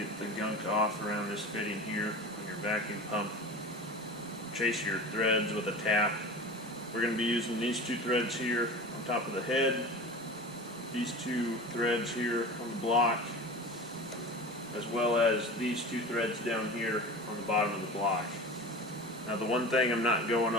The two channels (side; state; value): both; normal; correlation 0.33